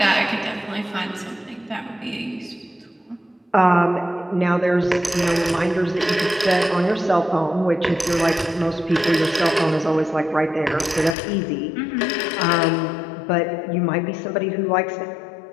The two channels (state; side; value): drops out; right; at 11.2 s